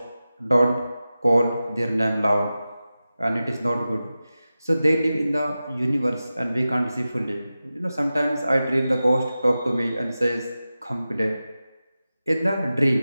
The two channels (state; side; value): inverted; both; correlation -0.94